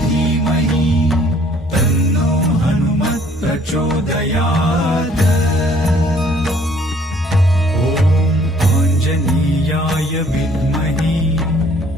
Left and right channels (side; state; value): both; normal; correlation 0.59